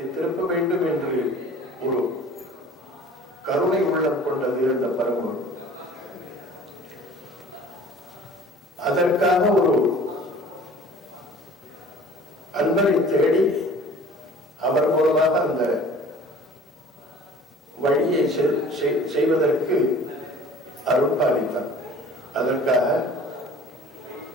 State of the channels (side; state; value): both; normal; correlation 0.48